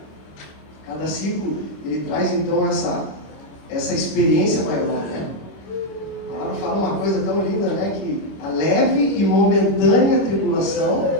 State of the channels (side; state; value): right; late; 25 ms